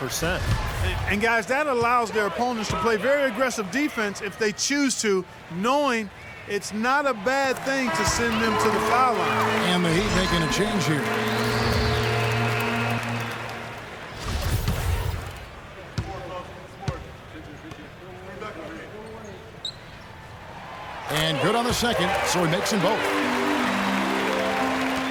And guys, that allows their opponents to play very aggressive defense if they choose to, knowing it's not a bad thing to send them to the foul line. And the Heat making a change here. And good on the second, so he makes them both.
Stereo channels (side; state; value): both; identical; correlation 1.00